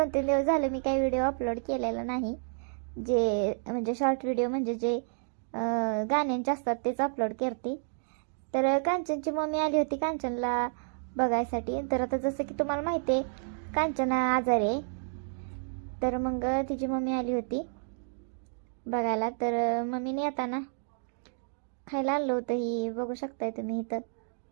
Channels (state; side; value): silent; left; digital silence